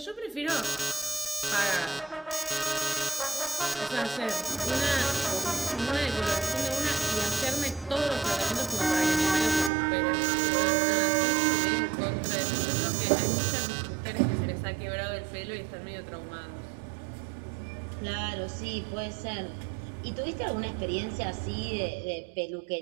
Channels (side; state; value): left; drops out; at 9.7 s